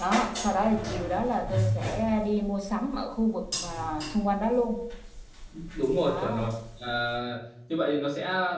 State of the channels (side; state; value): both; identical; correlation 1.00